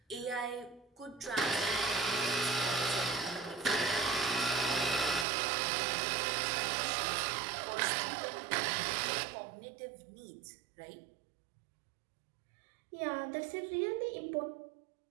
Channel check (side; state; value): left; drops out; at 5.2 s